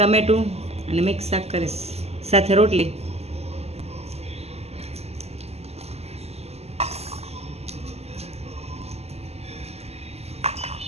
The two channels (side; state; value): left; late; 0.30 ms